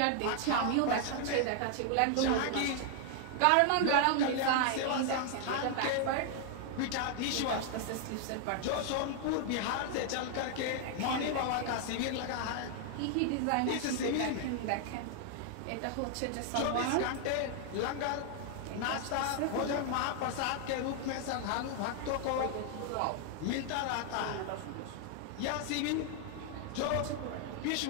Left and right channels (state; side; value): different; both; correlation 0.00